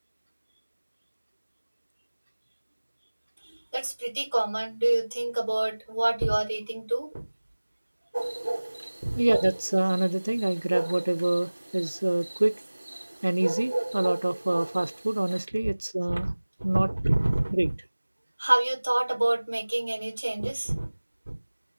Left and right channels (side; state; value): both; inverted; correlation -1.00